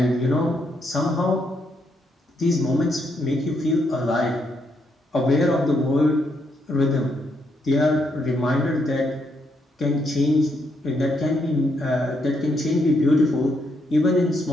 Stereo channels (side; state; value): both; normal; correlation 0.77